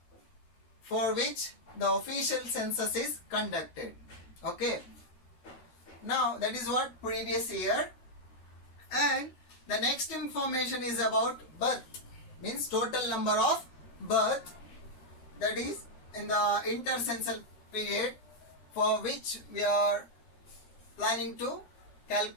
for which the official census is conducted. Okay. Now that is what previous year. And the next information is about birth, means total number of birth, that is in the intercensal period for which we are planning to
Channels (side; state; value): right; late; 13 ms